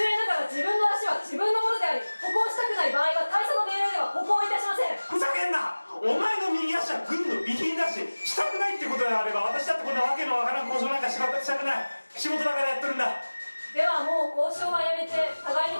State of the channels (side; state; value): both; inverted; correlation -1.00